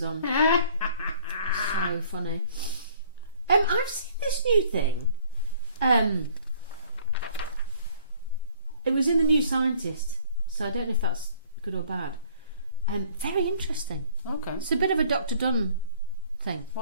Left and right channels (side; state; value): both; inverted; correlation -0.56